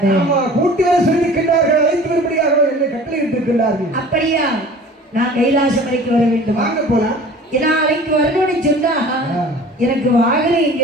ஆமா கூட்டி வர சொல்லியிருக்கின்றார்கள், அழைத்து வரும்படியாக என்னை கட்டளையிட்டு இருக்கின்றார்கள். அப்படியா? நான் கைலாசம் வரைக்கும் வர வேண்டும். வாங்க போலாம். நாளைக்கு வரணும்னு சொன்னா எனக்கு வாகனம் இங்க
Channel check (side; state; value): both; normal; correlation 0.44